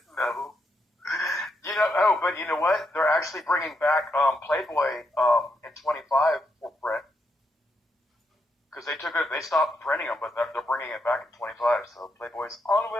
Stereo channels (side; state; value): both; normal; correlation 0.80